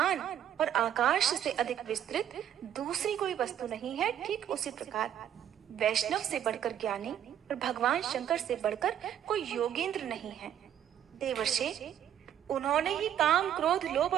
और आकाश से अधिक विस्तृत दूसरी कोई वस्तु नहीं है, ठीक उसी प्रकार वैष्णव से बढ़कर ज्ञानी और भगवान शंकर से बढ़कर कोई योगेंद्र नहीं है। देवर्षि, उन्होंने ही काम, क्रोध, लोभ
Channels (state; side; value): quieter; left; 10.2 dB